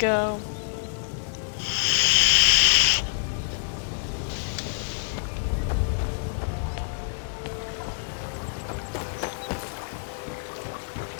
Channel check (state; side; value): silent; right; 60 dB below the other